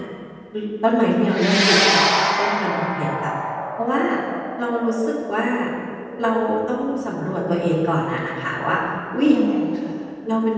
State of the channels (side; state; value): both; identical; correlation 1.00